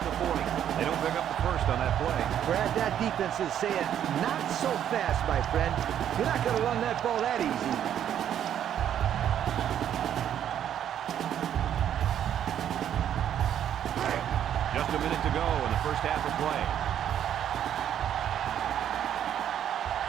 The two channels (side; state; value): left; quieter; 10.0 dB